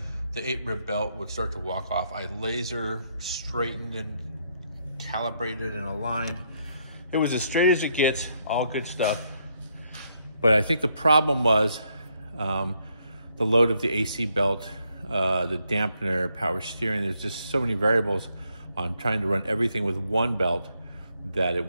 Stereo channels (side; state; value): both; inverted; correlation -0.75